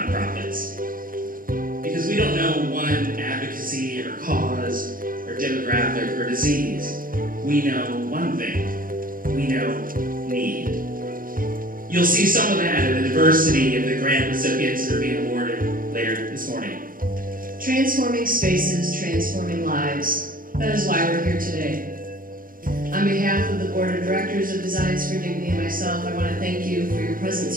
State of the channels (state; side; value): late; left; 0.41 ms